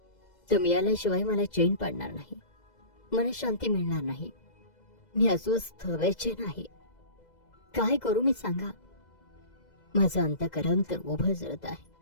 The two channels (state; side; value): late; right; 2.0 ms